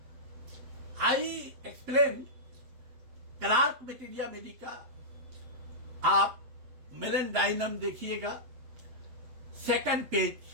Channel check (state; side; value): late; left; 7.8 ms